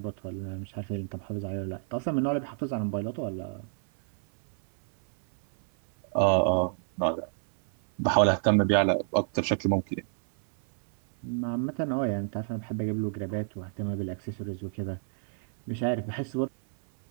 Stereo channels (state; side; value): silent; left; 58 dB below the other